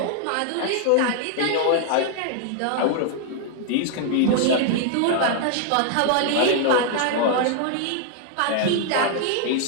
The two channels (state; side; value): different; both; correlation 0.00